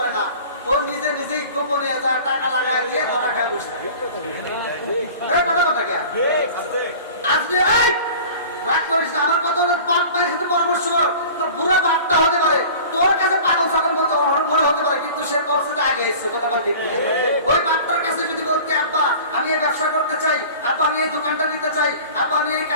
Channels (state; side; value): inverted; both; correlation -0.41